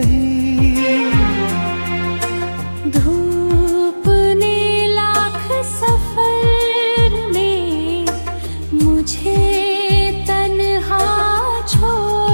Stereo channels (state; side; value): inverted; both; correlation -1.00